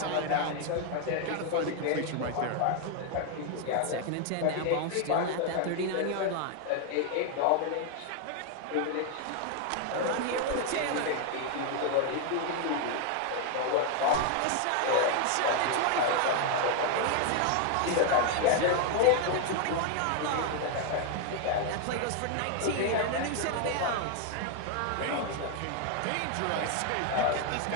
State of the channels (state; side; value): different; both; correlation 0.00